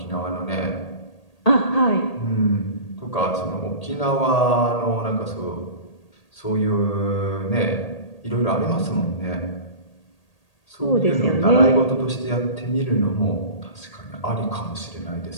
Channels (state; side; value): late; right; 1.8 ms